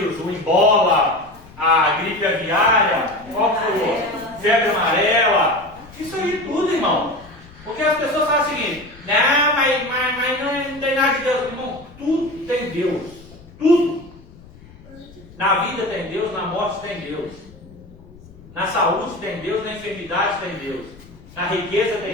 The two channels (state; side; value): noise; left; rumble, 22 dB below the sound